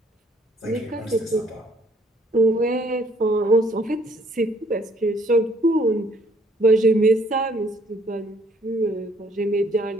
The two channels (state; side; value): normal; both; correlation 0.63